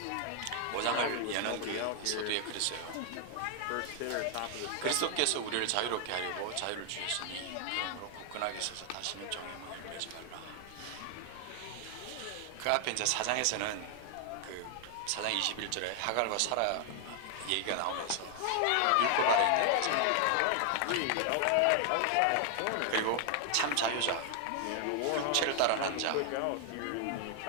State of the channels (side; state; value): both; different; correlation 0.00